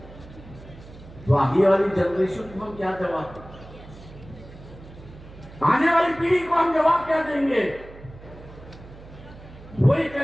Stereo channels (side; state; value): right; noise; hum, 18 dB below the sound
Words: तो आगे वाली जनरेशन को हम क्या जवाब दें? आने वाली पीढ़ी को हम जवाब क्या देंगे? वही